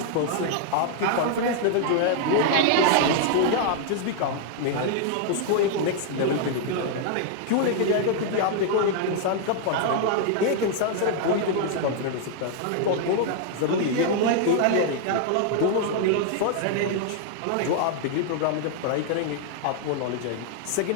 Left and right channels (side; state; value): both; different; correlation 0.00